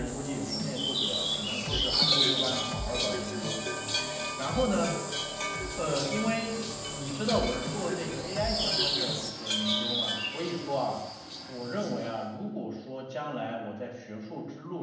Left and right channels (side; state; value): both; identical; correlation 1.00